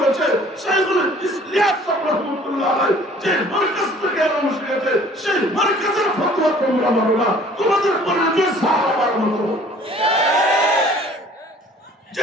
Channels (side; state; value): both; normal; correlation 0.53